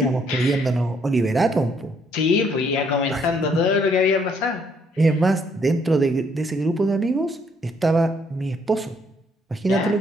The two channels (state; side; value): normal; both; correlation 0.69